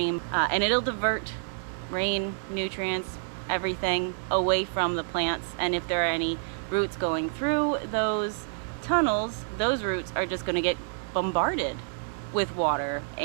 and it'll divert rain, nutrients everything away from the plants, and if there are any roots going through those tunnels, those roots are just going to get bombarded with water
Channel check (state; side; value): silent; left; digital silence